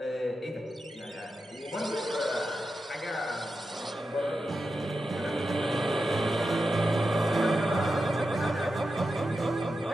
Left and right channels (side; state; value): both; normal; correlation 0.89